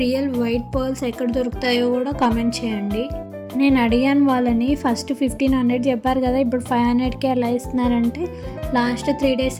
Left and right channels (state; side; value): identical; both; correlation 1.00